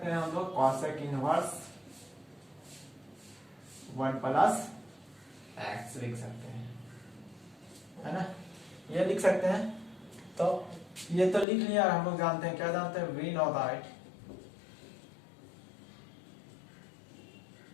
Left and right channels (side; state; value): right; drops out; at 11.5 s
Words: हैं हम लोग, कॉसेक इनवर्स 1 प्लस एक्स लिख सकते हैं, है ना। ये लिख सकते हैं। तो ये तो लिख लिया, हम लोग जानते हैं, क्या जानते हैं, वी नो दैट,